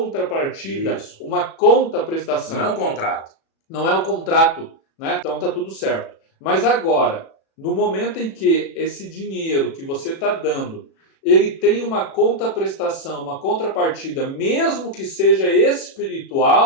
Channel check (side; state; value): right; late; 36 ms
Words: Isso. uma contraprestação. Não é um contrato. Não é o contrato, né? Então tá tudo certo. Mas agora, no momento em que esse dinheiro que você está dando, ele tem uma contraprestação, uma contrapartida, mesmo que seja